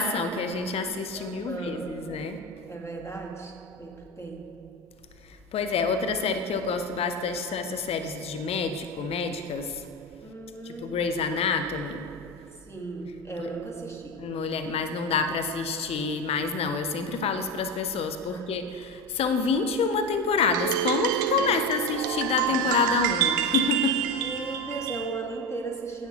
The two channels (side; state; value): both; normal; correlation 0.19